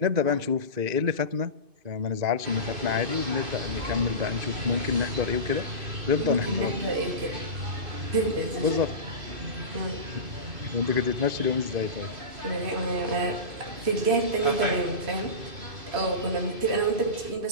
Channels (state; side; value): late; left; 2.5 ms